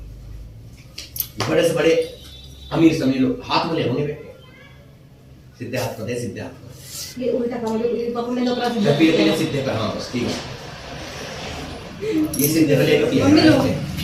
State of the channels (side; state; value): both; identical; correlation 1.00